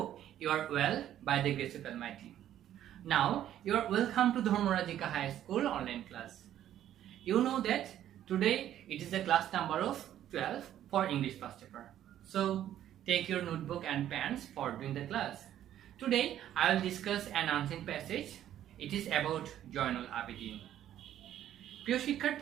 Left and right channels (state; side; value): quieter; left; 11.5 dB